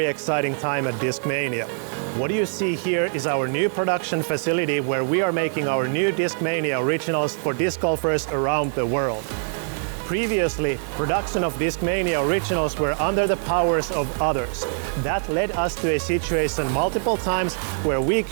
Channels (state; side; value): silent; left; 63 dB below the other